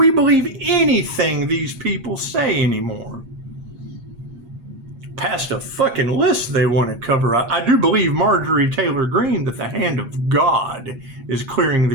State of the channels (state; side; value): late; left; 8.5 ms